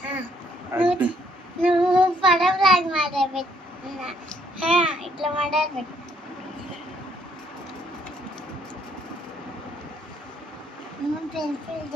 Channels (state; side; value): normal; both; correlation 0.67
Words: నువ్వు పడవలాగా మాట్లాడుతున్నా ఇట్లా మాట్లాడబెట్టు. నువ్వు పెన్సిల్